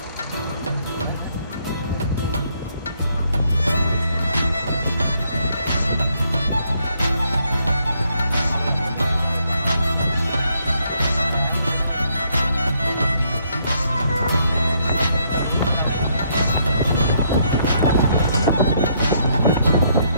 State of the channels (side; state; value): both; inverted; correlation -0.72